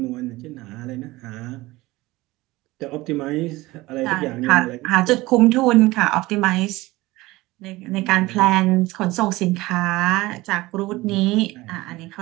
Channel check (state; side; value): quieter; left; 19.7 dB